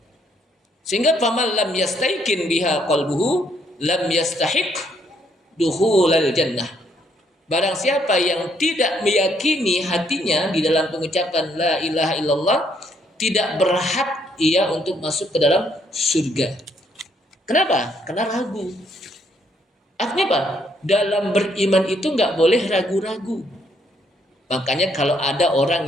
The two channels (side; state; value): both; normal; correlation 0.70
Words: Sehingga faman lam yastaiqin biha qalbuhu lam yastahiq dukhulal jannah. Barang siapa yang tidak meyakini hatinya di dalam pengucapan la ilaha illallah, tidak berhak ia untuk masuk ke dalam surga. Kenapa? Karena ragu. Artinya apa? Dalam beriman itu nggak boleh ragu-ragu. Makanya kalau ada orang